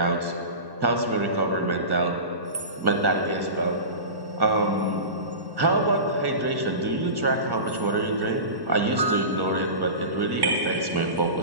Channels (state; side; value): late; left; 1.1 ms